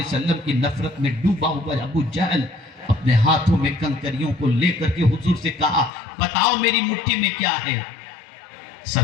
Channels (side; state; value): right; drops out; at 5.9 s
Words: وسلم کی نفرت میں ڈوبا ہوا ابو جہل اپنے ہاتھوں میں کنکریوں کو لے کر کے حضور سے کہا بتاؤ میری مٹھی میں کیا ہے؟